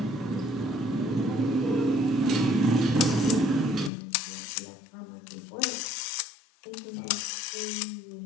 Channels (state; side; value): drops out; right; at 3.9 s